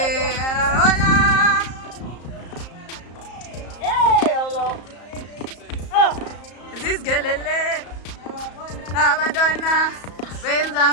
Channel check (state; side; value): late; right; 34 ms